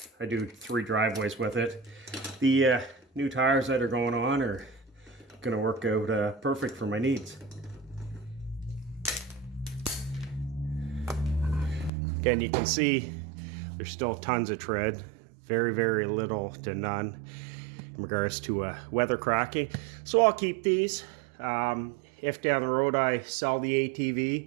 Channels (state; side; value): drops out; left; at 11.9 s